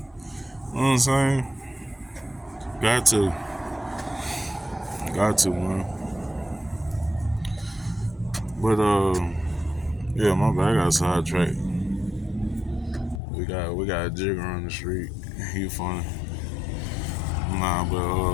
what I'm saying? Got to, man. But yeah, my bad. I got sidetracked. We got a jigger on the street. He funny. Nah,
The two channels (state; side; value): drops out; right; at 13.2 s